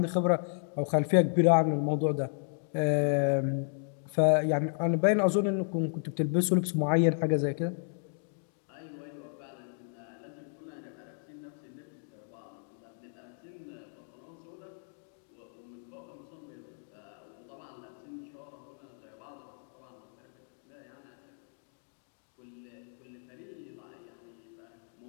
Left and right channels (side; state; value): right; silent; digital silence